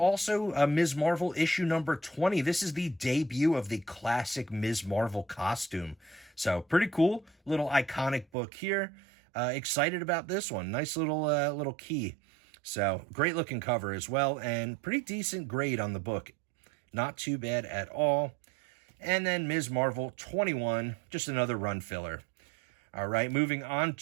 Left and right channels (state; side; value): drops out; left; at 8.2 s